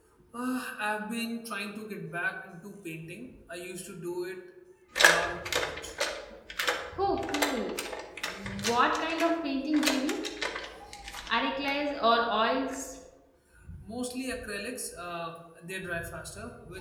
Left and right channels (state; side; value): identical; both; correlation 1.00